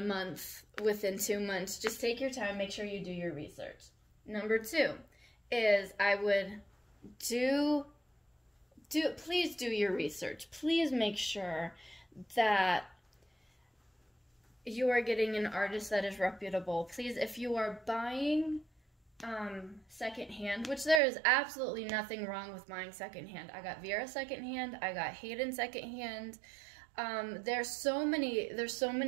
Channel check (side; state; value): left; drops out; at 21.0 s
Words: month, within 2 months. Just take your time, make sure you do your research. Number 2 is I would please do your research. Please make sure that you are getting an artist that is reputable. Please, if you are buying secondhand, which there is absolutely nothing wrong with buying secondhand. I got Vera secondhand. I got Hayden secondhand. There's so